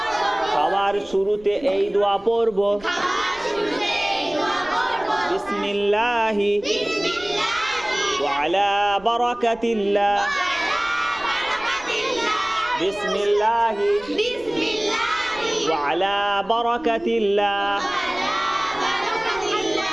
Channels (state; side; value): noise; right; rumble, 22 dB below the sound